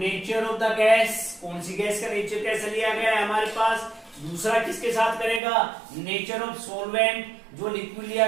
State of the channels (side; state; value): left; drops out; at 5.4 s